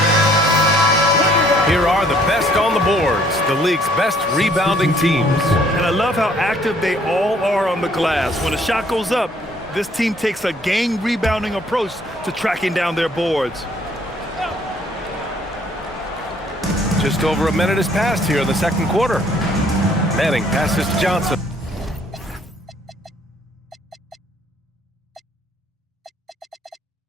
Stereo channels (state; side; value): normal; both; correlation 0.62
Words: Here are the best on the boards, the league's best rebounding teams. And I love how active they all are on the glass. When a shot goes up, this team takes a gang rebounding approach to tracking down their boards. Just over a minute has passed here in the second quarter. Manning passes to Johnson.